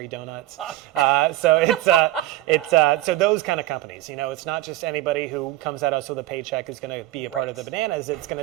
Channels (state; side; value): quieter; left; 15.7 dB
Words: donuts. So it's those kind of companies. It's not just anybody who comes at us with a paycheck is going to be a part of the Bananas. It's going